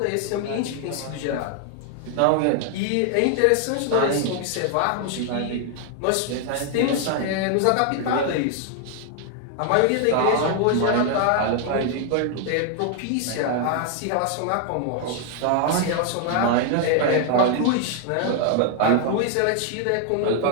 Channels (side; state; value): both; different; correlation 0.00